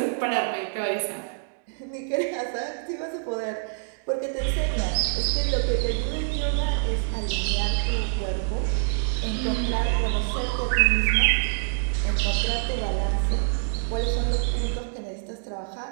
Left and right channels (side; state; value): left; silent; digital silence